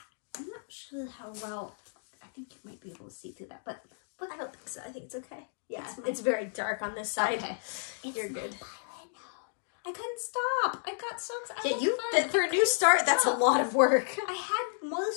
I'm not sure how well. I think you might be able to see through that, but I don't think so. I think it's okay. Yeah, it's very dark on this side. Okay, you're good. I couldn't stop. I got so excited. Yeah, for a new start, that's a lot of work. I had more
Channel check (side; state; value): right; silent; digital silence